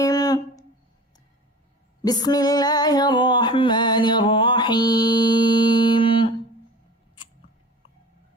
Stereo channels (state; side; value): normal; both; correlation 0.38